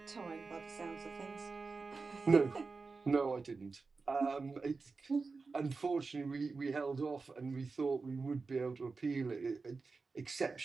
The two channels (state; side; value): quieter; left; 4.3 dB